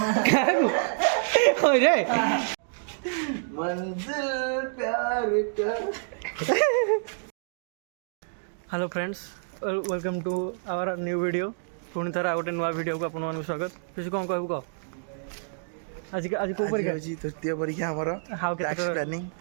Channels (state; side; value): silent; left; digital silence